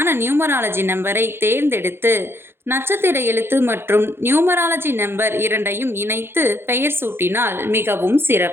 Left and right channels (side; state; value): left; late; 0.11 ms